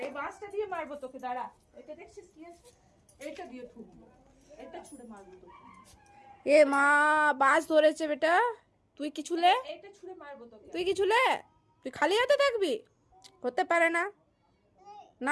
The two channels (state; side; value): identical; both; correlation 1.00